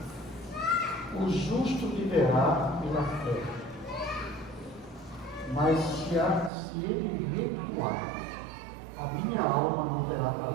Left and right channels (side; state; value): left; drops out; at 6.5 s